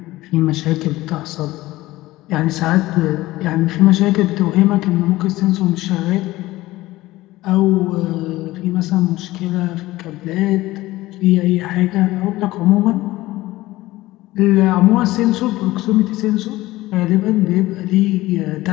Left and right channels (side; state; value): right; quieter; 17.7 dB